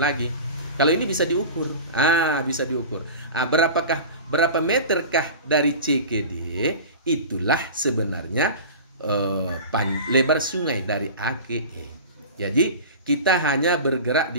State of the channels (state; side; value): inverted; both; correlation -0.33